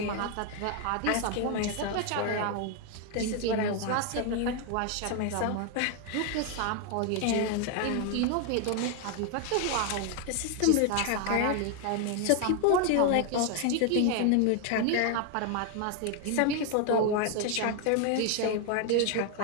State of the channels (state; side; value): different; both; correlation 0.01